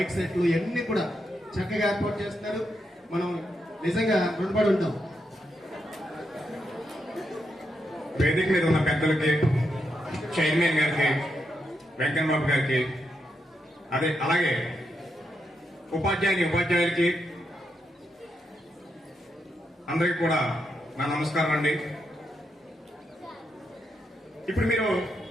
సెట్లు ఇవన్నీ కూడా చక్కగా ఏర్పాటు చేస్తున్నారు. మనం నిజంగా రుణపడి ఉంటాం. వేదిక మీద ఉన్న పెద్దలకి, చైర్మన్ గారికి, వెంకన్నబాబు గారికి, అలాగే ఉపాధ్యాయులకి అందరికీ కూడా నా నమస్కారం అండి. ఇప్పుడు మీరు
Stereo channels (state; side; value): normal; both; correlation 0.82